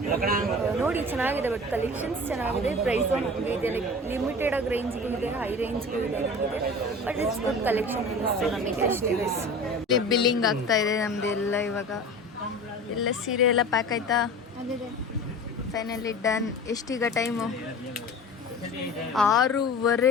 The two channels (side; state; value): both; normal; correlation 0.37